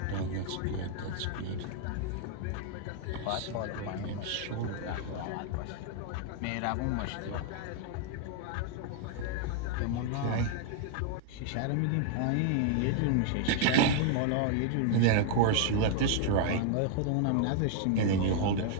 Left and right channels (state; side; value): different; both; correlation 0.00